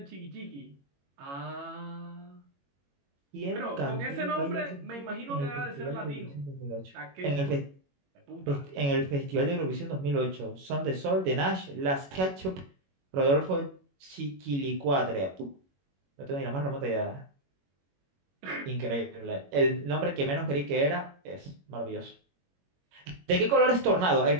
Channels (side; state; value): left; late; 21 ms